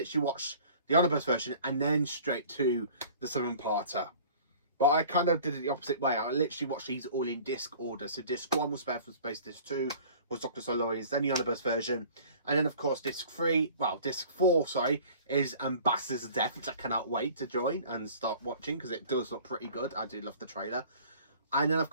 watched the omnibus version and then straight to the 7-parter. But I kind of did it the opposite way. I literally watched these all in disc order. So disc 1 was Spare from Space, disc 2 was Dr. Silurians, then the omnibus version. And then, of course, disc 4, sorry, is Ambassadors of Death, which I cannot wait to join and start watching, because it does look pretty good. I do love the trailer. And then, of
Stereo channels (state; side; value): inverted; both; correlation -0.47